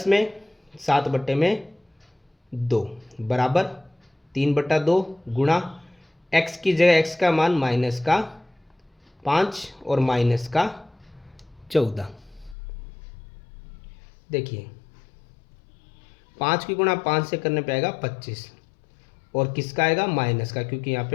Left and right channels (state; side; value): drops out; right; at 12.6 s